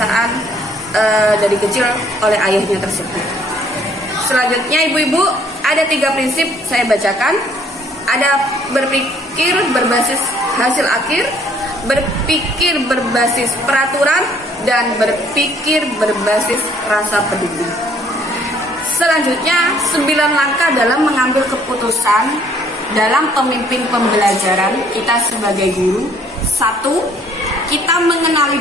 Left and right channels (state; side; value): normal; both; correlation 0.61